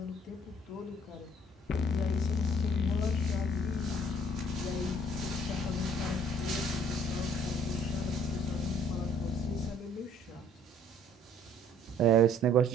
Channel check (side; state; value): both; normal; correlation 0.59